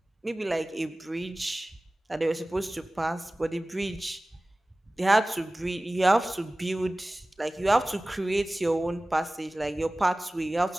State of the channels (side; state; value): both; normal; correlation 0.98